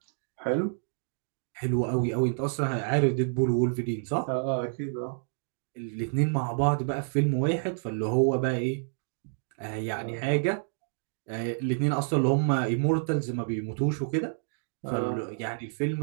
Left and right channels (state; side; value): silent; left; digital silence